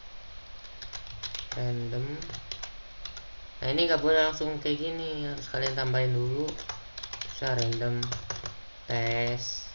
Nah, ini nggak boleh langsung kayak gini, harus kalian tambahin dulu. Bisa random test.py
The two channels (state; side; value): inverted; both; correlation -1.00